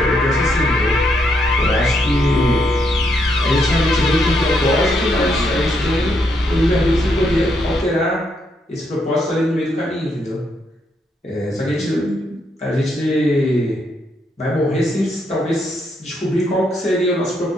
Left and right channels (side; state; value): both; normal; correlation 0.76